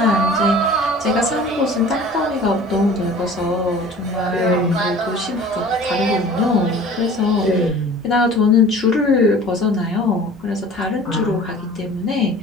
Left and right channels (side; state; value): both; normal; correlation 0.44